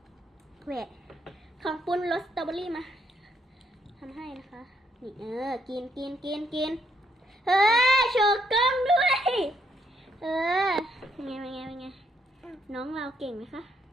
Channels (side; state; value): both; normal; correlation 0.74